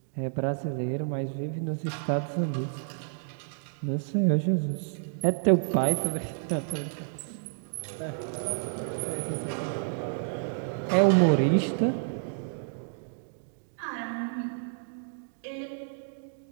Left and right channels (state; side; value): silent; left; digital silence